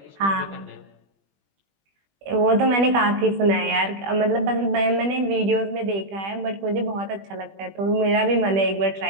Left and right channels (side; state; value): left; late; 20 ms